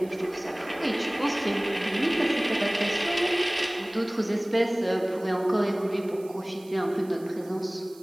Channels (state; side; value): noise; right; hiss, 24 dB below the sound